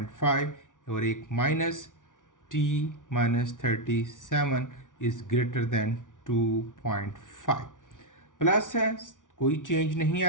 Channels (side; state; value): right; late; 0.87 ms